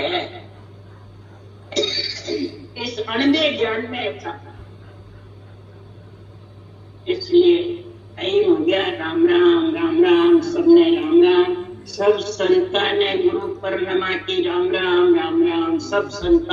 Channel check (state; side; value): identical; both; correlation 1.00